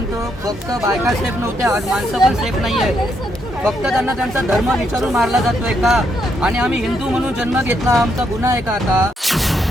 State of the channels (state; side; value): normal; both; correlation 0.77